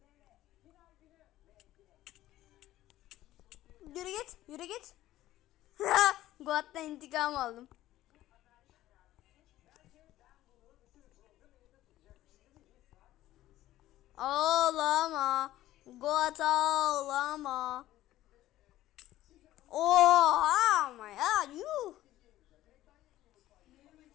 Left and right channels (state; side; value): quieter; right; 14.7 dB